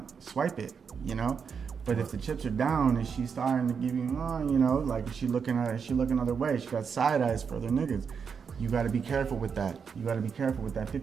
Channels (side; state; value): left; quieter; 6.3 dB